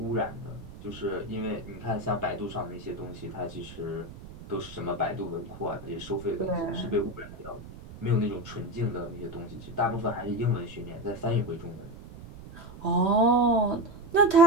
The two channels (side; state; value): right; noise; rumble, 15 dB below the sound